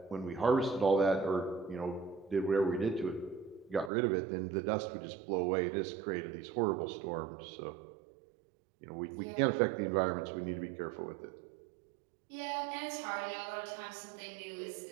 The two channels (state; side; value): drops out; left; at 3.9 s